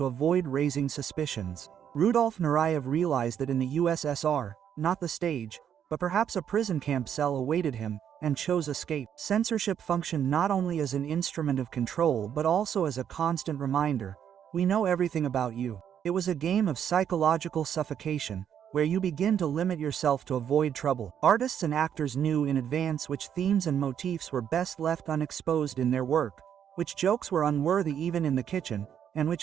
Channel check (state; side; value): quieter; left; 8.9 dB